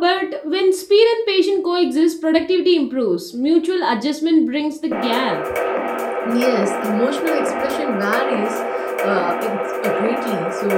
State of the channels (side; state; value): both; identical; correlation 1.00